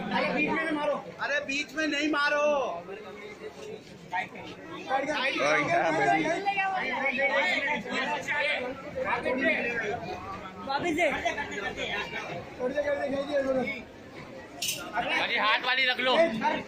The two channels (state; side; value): identical; both; correlation 1.00